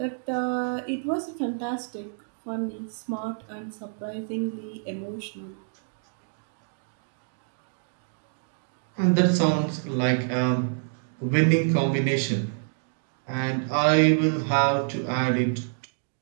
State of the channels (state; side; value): silent; left; digital silence